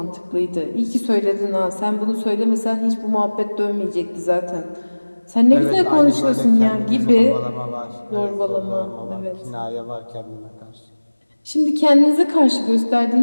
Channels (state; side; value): inverted; both; correlation -1.00